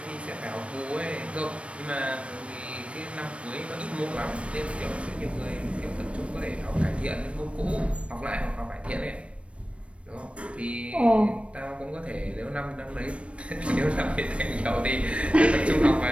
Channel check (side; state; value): left; late; 0.061 ms